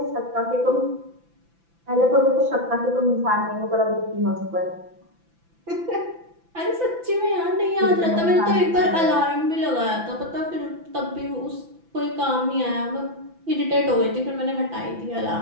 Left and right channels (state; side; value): late; left; 5.9 ms